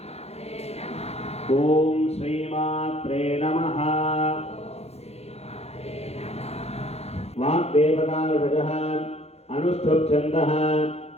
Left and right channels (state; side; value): late; right; 0.30 ms